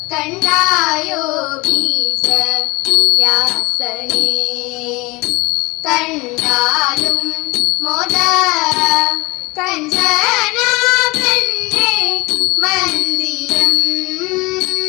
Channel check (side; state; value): right; quieter; 23.5 dB